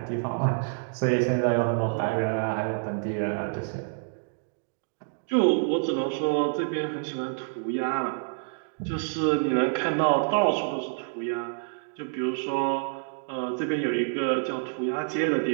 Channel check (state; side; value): silent; left; digital silence